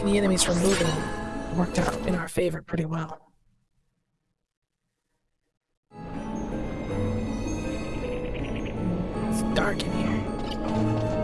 the enemies from moving worked out in our favor pretty well. It's dark in here.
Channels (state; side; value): identical; both; correlation 1.00